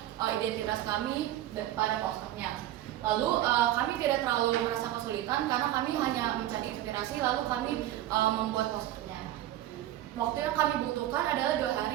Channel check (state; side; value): quieter; left; 13.6 dB